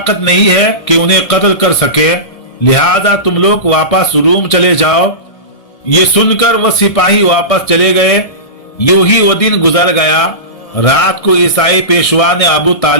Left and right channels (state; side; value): late; right; 1.7 ms